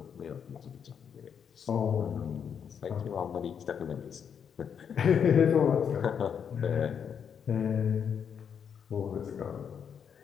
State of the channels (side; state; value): right; quieter; 7.5 dB